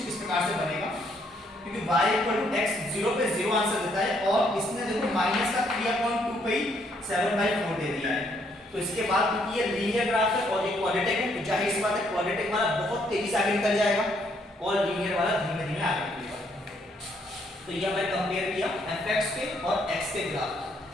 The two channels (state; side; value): normal; both; correlation 0.70